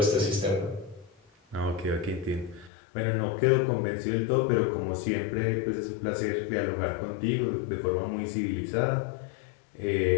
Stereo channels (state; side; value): drops out; right; at 2.7 s